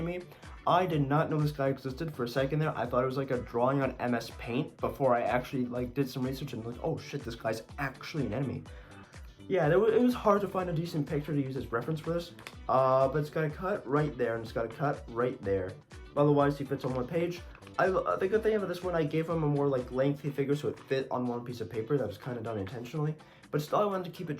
I did not know this guy existed for a second there. I thought it was like a drawing on MS Paint before I actually like did some research and like, oh shit, this guy's actually an enemy. Yeah, it was hard to find a decent picture to use as reference for this. But it's got a cut right there, and it's got a cut right there. Otherwise, he fits on one page. The good thing about this one, I gave him a more like lengthy figure so it fit on one piece of paper. That was kind of done intentionally. But still, I wanted to keep it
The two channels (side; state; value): both; identical; correlation 1.00